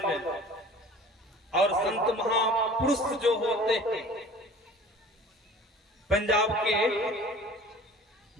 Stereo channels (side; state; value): both; normal; correlation 0.45